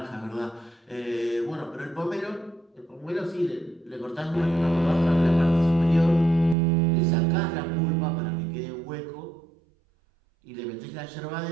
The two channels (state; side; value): drops out; left; at 6.6 s